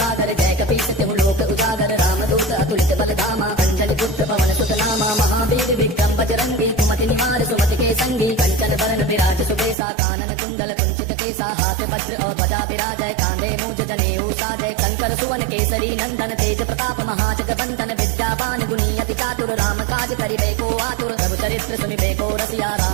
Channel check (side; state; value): left; drops out; at 9.8 s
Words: जय कपीस तिहु लोक उजागर। रामदूत अतुलित बल धामा अंजनी पुत्र पवन सुत नामा। महावीर विक्रम बजरंगी कुमति निहार सुमति के संगी। कंचन बरन विराज सुबेसा कानन कुंडल कुंचित केसा। हाथ वज्र और ध्वजा विराजय कांधे मूंछ जनेऊ साजय। शंकर सुवन केसरी नंदन तेज प्रताप महाजग बंदन। विद्यावान गुणी अति चातुर राम काज करिबे को आतुर। प्रभु चरित्र सुनिबे को रसिया